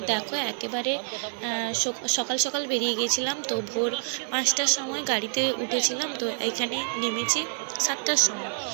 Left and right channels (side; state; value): left; silent; 60 dB below the other